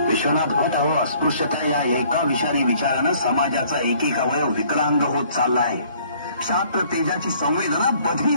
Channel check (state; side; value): inverted; both; correlation -0.58